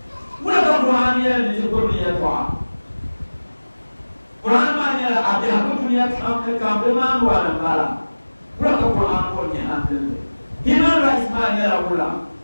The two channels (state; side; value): inverted; both; correlation -1.00